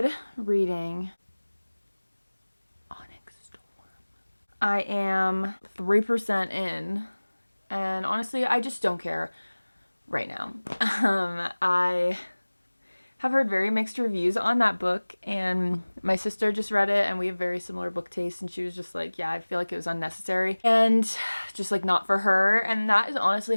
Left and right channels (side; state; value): both; inverted; correlation -1.00